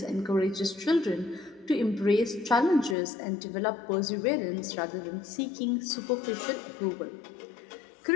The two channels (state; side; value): drops out; right; at 3.0 s